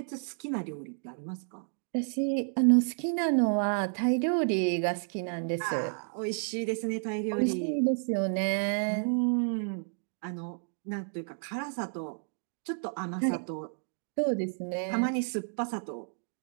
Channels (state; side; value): silent; left; 57 dB below the other